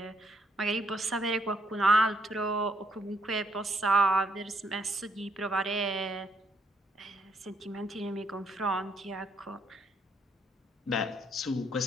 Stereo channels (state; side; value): normal; both; correlation 0.72